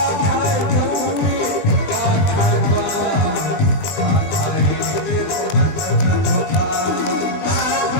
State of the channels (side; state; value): right; late; 20 ms